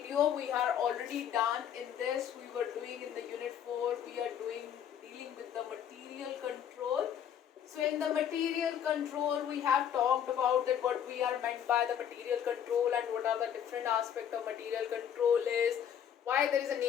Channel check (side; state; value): right; quieter; 9.2 dB